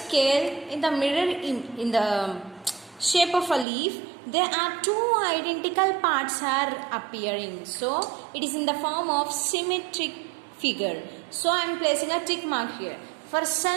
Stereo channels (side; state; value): left; drops out; at 3.7 s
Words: in the mirror in the shape of a leaf, there are two identical parts are appearing. So it is in the form of symmetric figure. So I am placing a tick mark here. For